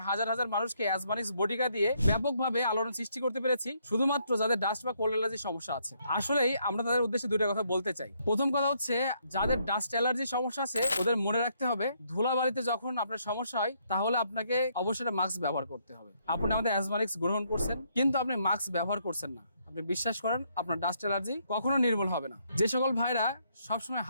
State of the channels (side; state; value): both; inverted; correlation -0.72